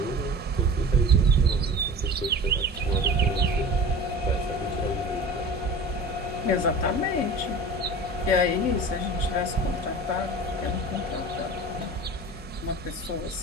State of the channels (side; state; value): both; normal; correlation 0.37